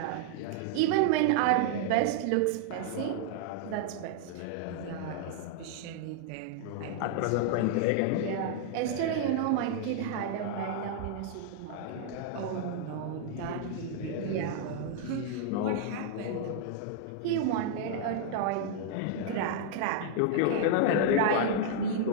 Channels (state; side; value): different; both; correlation -0.01